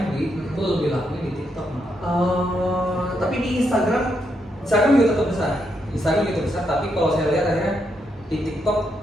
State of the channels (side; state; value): both; normal; correlation 0.79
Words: itu lebih lakunya di TikTok malah. Tapi di Instagram juga tetap besar. Tapi kalau saya lihat akhirnya di